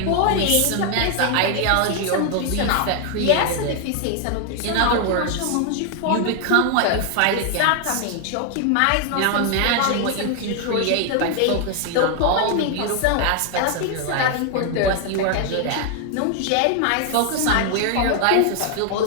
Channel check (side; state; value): both; different; correlation 0.00